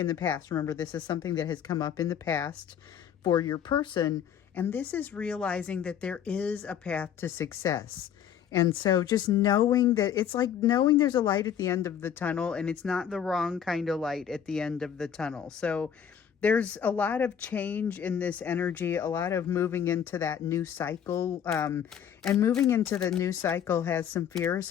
the past. Remember, this is something that has come up in the past for your person, and this is realizing that there is a path to success. And so just knowing that, it's like knowing there's a light at the end of the tunnel, and it's not the wrong kind of light at the end of the tunnel. So there's a lot of change in this energy, a lot of moving into that new cycle. And moving into the new cycle has some fear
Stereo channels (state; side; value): quieter; right; 8.7 dB